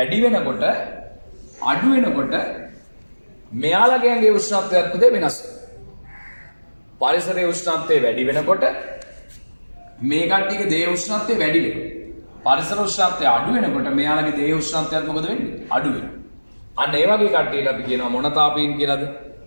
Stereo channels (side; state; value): both; inverted; correlation -1.00